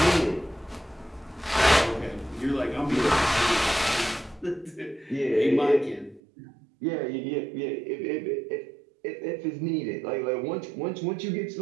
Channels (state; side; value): drops out; left; at 6.2 s